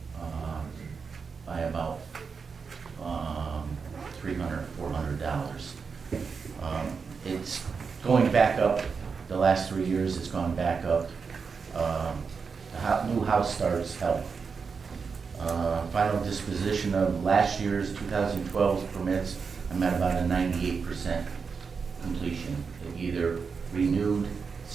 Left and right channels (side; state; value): left; quieter; 5.4 dB